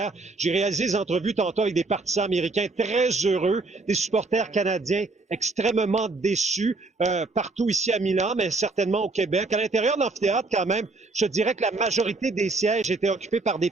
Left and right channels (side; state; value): left; quieter; 3.5 dB